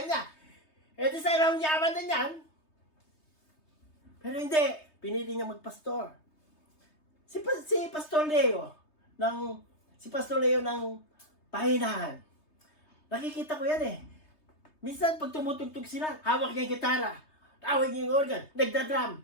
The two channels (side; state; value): right; late; 3.3 ms